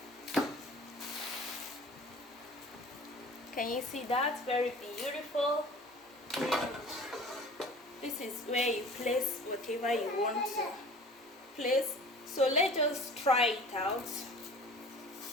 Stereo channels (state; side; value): normal; both; correlation 0.44